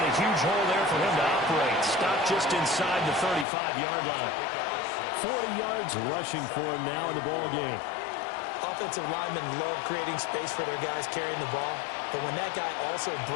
a huge hole there for him to operate. Stopped just inside the 35-yard line. 40 yards rushing for him now in the ball game. Offensive linemen love creating space for their guys carrying the ball. But when that guy also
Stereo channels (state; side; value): drops out; right; at 3.5 s